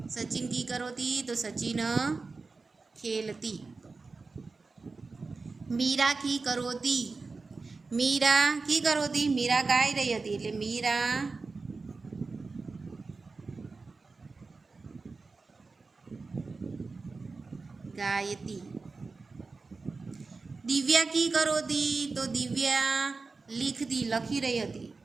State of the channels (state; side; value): quieter; left; 4.0 dB